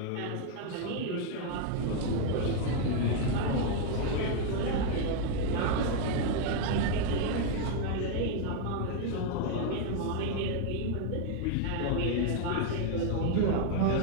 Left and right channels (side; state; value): both; different; correlation 0.00